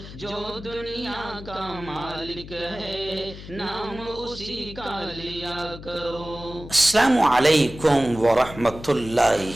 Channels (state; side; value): noise; left; hum, 14 dB below the sound